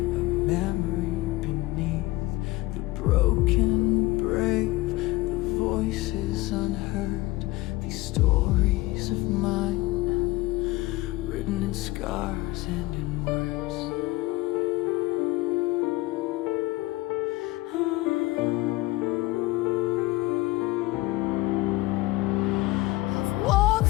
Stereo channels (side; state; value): right; quieter; 20.1 dB